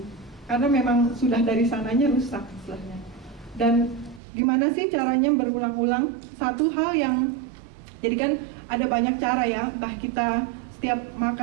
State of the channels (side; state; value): left; drops out; at 4.2 s